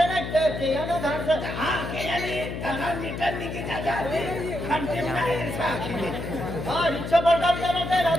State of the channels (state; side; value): noise; left; hum, 6 dB below the sound